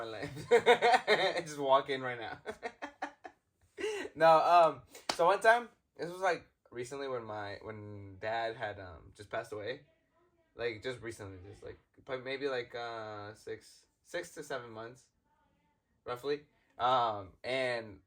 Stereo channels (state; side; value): identical; both; correlation 1.00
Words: life. Just walk in right now. No, so one time, this was like recently when Dad had just passed away. Like just recently, just like maybe like 6 to 7 months, roughly. And